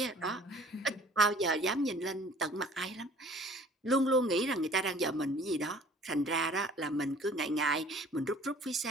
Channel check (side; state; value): both; normal; correlation 0.51